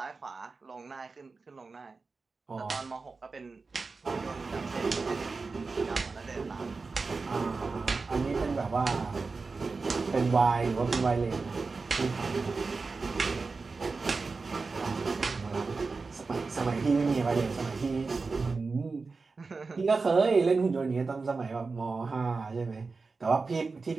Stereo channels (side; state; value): left; quieter; 4.2 dB